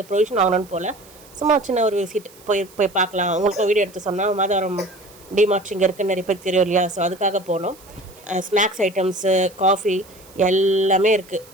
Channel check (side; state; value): right; noise; hiss, 24 dB below the sound